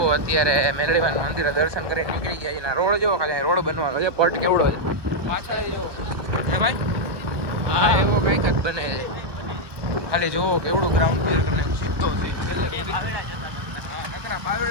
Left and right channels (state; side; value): late; left; 1.2 ms